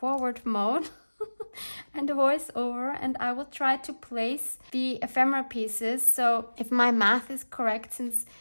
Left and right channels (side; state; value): both; inverted; correlation -1.00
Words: mode and the voice over, and I will try to place the ephemera pieces. So if my math is correct, since